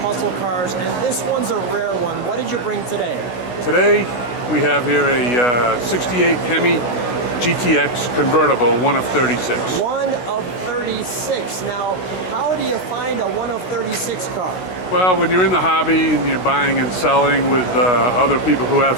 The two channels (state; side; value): late; right; 16 ms